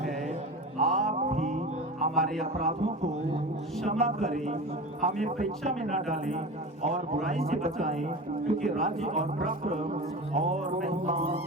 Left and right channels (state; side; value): normal; both; correlation 0.30